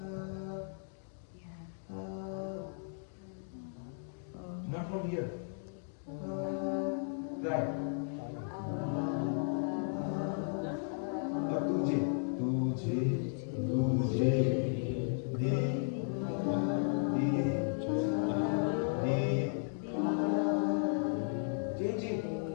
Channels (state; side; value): silent; right; digital silence